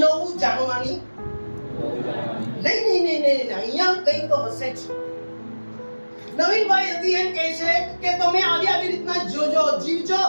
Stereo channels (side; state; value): both; inverted; correlation -1.00